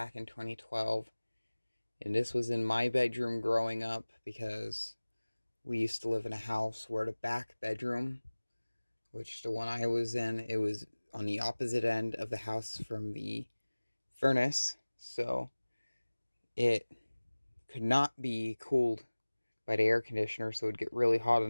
in 2012. And this was in my bedroom growing up because we used to live in a house where the back bedroom, which the one I was in, it was on the opposite end of the house from the furnace, so it could not be cooled by the air conditioner, so it would get really hot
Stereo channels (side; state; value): both; inverted; correlation -1.00